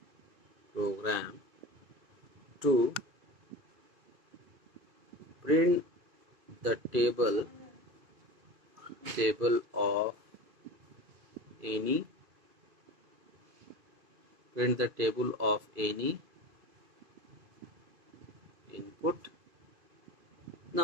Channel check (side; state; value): left; late; 2.5 ms